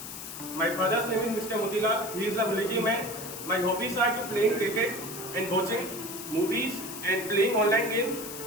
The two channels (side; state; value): left; noise; hiss, 10 dB below the sound